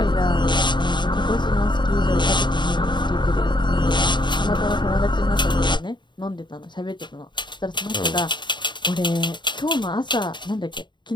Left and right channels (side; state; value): right; late; 0.22 ms